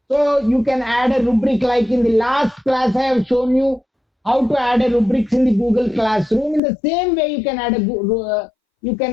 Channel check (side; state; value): right; drops out; at 6.6 s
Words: So you can add a rubric, like in the last class I have shown you how to add a rubrics in the Google Classroom. In the same way, you can add